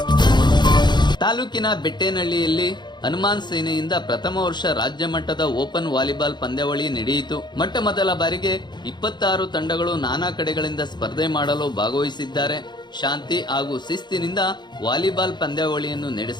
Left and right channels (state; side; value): late; right; 0.21 ms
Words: ಬೆಟ್ಟೇನಹಳ್ಳಿಯಲ್ಲಿ ಹನುಮಾನ್ ಸೇನೆಯಿಂದ ಪ್ರಥಮ ವರ್ಷ ರಾಜ್ಯ ಮಟ್ಟದ ಓಪನ್ ವಾಲಿಬಾಲ್ ಪಂದ್ಯಾವಳಿ ನಡೆಯಿತು. ಮೊಟ್ಟ ಮೊದಲ ಬಾರಿಗೆ 26 ತಂಡಗಳು ನಾನಾ ಕಡೆಗಳಿಂದ ಸ್ಪರ್ಧೆ ಮಾಡಲು ಭಾಗವಹಿಸಿದ್ದಾರೆ. ಶಾಂತಿ ಹಾಗೂ ಶಿಸ್ತಿನಿಂದ ವಾಲಿಬಾಲ್ ಪಂದ್ಯಾವಳಿಯನ್ನು